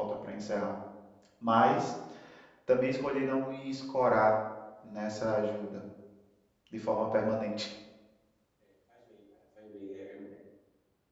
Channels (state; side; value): identical; both; correlation 1.00